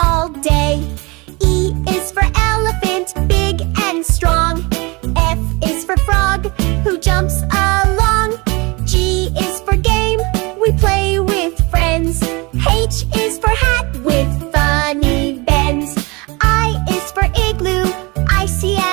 day. E is for elephant, big and strong. F is for frog, who jumps along. G is for game, we play with friends. H is for hat with funny bends. I is for igloo, icy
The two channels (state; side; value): quieter; left; 25.9 dB